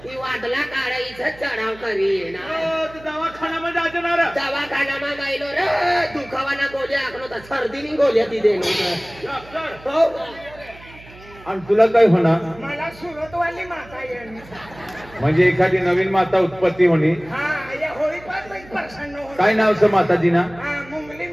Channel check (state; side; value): noise; right; hum, 21 dB below the sound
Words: ती वादला काढायचं चढाव करी ना दवाखान्यामध्ये जाणार दवाखानामा गायलो रे दुखावाना गोळ्या आखलो तर सर्दीनी गोळ्या ती देणं हो आणि तुला काय होणार मला सुरतवाली माता येईल म्हणजे एखादी नवीन माता उत्पत्ती होणी हा या होळी पाच प्रसन्न होईल काय नाव असं माताजीना हा मुंगली